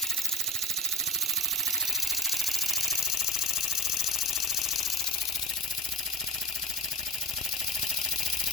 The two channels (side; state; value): both; normal; correlation 0.33